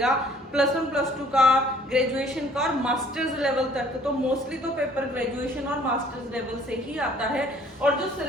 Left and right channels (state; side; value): normal; both; correlation 0.57